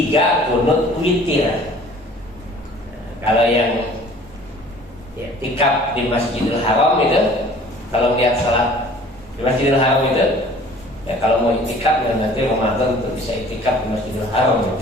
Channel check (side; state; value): both; normal; correlation 0.50